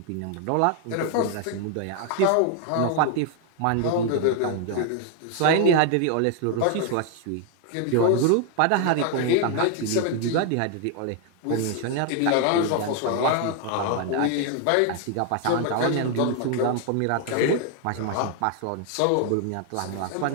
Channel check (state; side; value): different; both; correlation 0.00